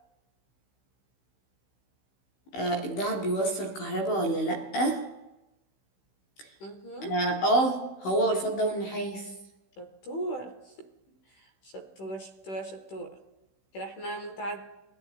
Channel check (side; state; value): right; late; 16 ms